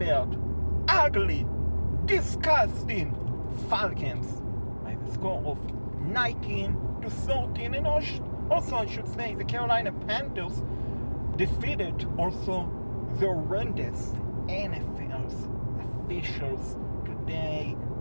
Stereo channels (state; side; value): inverted; both; correlation -1.00